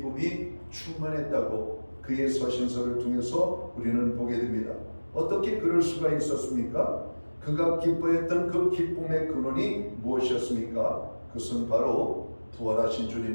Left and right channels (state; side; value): inverted; both; correlation -1.00